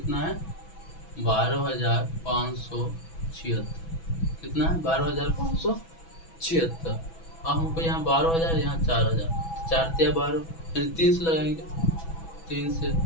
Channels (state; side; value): late; right; 6.1 ms